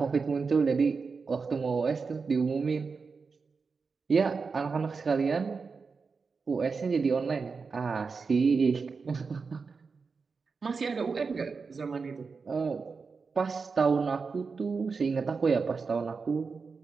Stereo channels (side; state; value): left; quieter; 4.9 dB